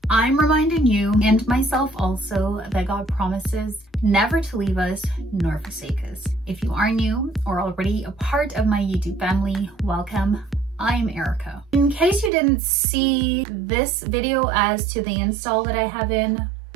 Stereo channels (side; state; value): left; drops out; at 12.3 s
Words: I'm reminding you and myself also that God promises never to leave us nor forsake us. If you are new or already a part of my YouTube family, welcome. I'm Erica. In case you didn't see this video as to the install that I have in